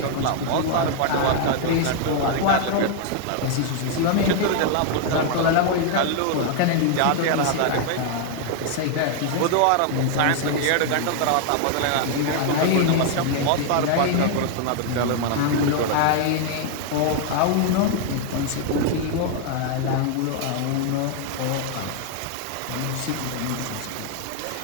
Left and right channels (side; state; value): both; different; correlation 0.00